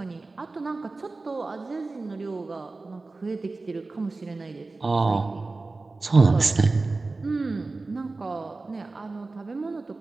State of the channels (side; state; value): left; quieter; 3.5 dB